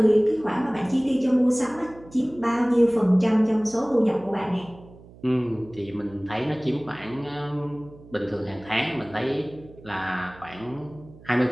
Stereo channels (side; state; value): right; noise; hum, 22 dB below the sound